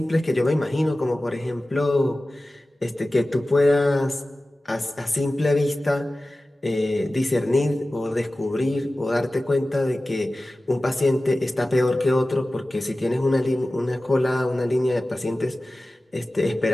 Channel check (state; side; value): normal; both; correlation 0.96